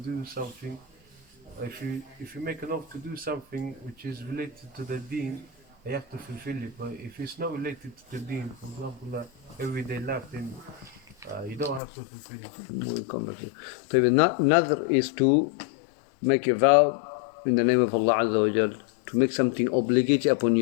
something. If you make an oath to do something which is related to the deen, you have to fulfill it. But if it's not related to the deen, for example, everyday life, then you don't have to fulfill it. So nadr is to make a vow in the name of Allah Azza wa Jal, to make something obligatory upon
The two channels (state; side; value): drops out; right; at 11.8 s